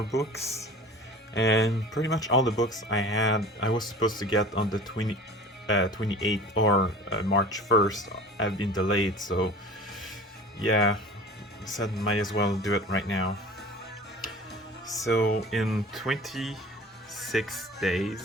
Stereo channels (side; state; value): both; normal; correlation 0.40